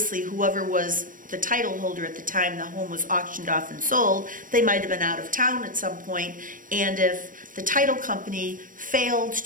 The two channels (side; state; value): left; late; 0.39 ms